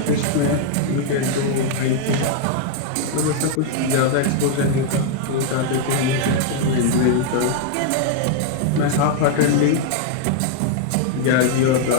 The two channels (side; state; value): both; different; correlation 0.00